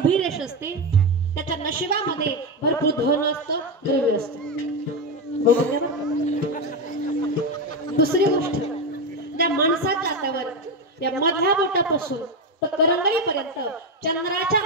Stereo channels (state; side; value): normal; both; correlation 0.12